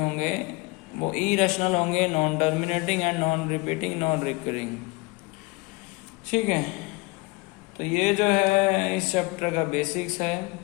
वो इरेशनल होंगे non terminating and non repeating non recurring ठीक है तो ये जो है इस चैप्टर का बेसिक्स है,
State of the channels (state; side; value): quieter; right; 25.1 dB